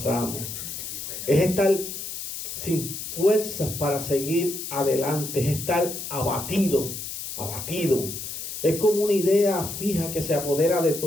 Es estar sin fuerzas para seguir adelante, es estar abatido. Es como una idea fija que se apodera de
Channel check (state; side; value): noise; left; hiss, 7 dB below the sound